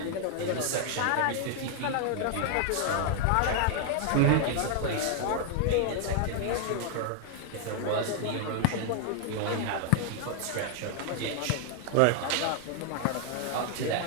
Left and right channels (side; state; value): both; different; correlation 0.00